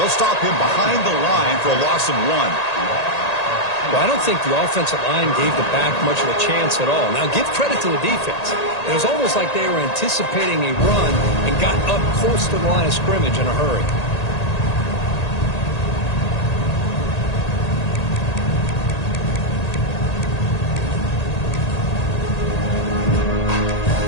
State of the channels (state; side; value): late; right; 1.8 ms